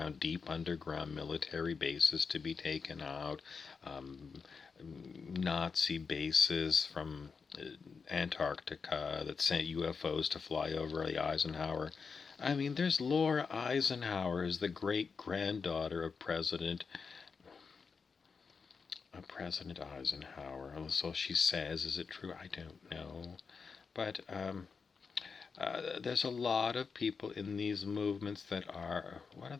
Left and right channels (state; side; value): quieter; right; 5.3 dB